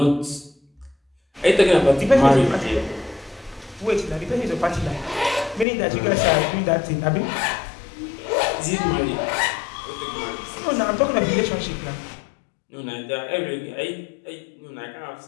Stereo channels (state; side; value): drops out; right; at 5.7 s